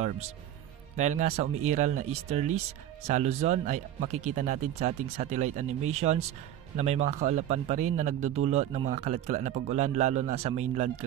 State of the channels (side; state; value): left; quieter; 11.7 dB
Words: Dahil nga sa umiiral na easterlies sa Luzon ay makikita natin sa ating satellite animations na may mga kaulapan pa rin na nagdudulot ng mga kalat-kalat na pag-ulan lalo na sa mainland